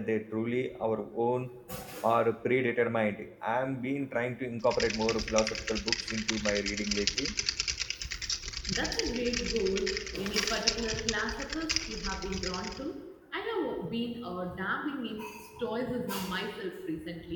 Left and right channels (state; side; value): identical; both; correlation 1.00